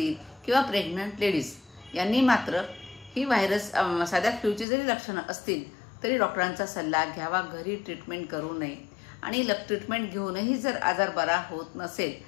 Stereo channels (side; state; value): right; drops out; at 4.7 s